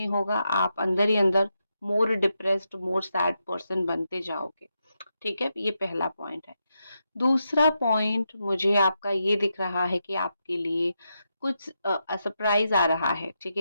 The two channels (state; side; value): inverted; both; correlation -0.85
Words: होगा, आप अंदर ही अंदर मोर डिप्रेस्ड, मोर सैड पर्सन बनते जाओगे, ठीक है। ये पहला पॉइंट है। दूसरा पॉइंट मुझे आपका ये दिख रहा है कि आपके लिए कुछ सरप्राइज आ रहा है, ठीक